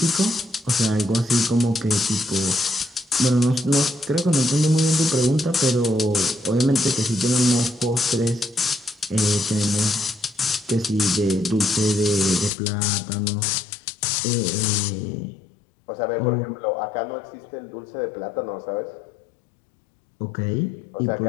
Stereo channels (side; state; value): right; drops out; at 12.5 s